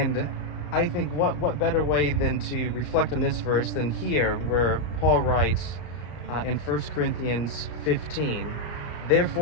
I think what better way than to reflect on this verse than here, where Paul writes in 1 Corinthians 15,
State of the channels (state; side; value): late; right; 34 ms